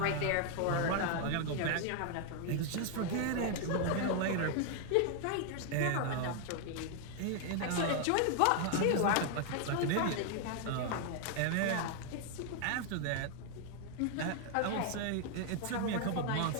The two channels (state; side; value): different; both; correlation 0.00